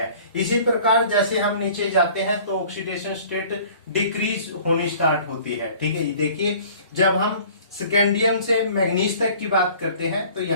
इसी प्रकार जैसे हम नीचे जाते हैं तो ऑक्सीडेशन स्टेट डिक्रीज होनी स्टार्ट होती है। ठीक है, ये देखिए जब हम स्कैंडियम से मैग्नीज तक की बात करते हैं तो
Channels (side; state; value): both; inverted; correlation -0.49